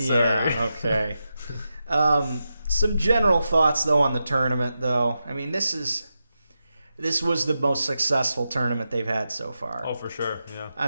Sorry. Yeah, okay. Some general thoughts, though, on the tournament, though. I mean, this was the most successful tournament they've had so far. Oh, for sure. Yeah. I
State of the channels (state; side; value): inverted; both; correlation -0.89